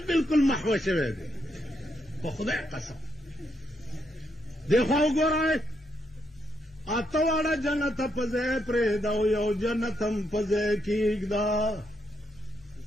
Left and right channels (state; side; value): normal; both; correlation 0.78